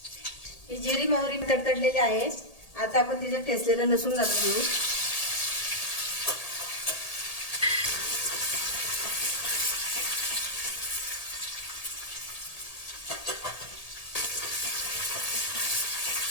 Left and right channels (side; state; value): right; late; 1.8 ms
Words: ही जिरी मोहरी तडतडलेली आहे। आता आपण तिच्यात ठेचलेलं लसूण घालून घेऊ।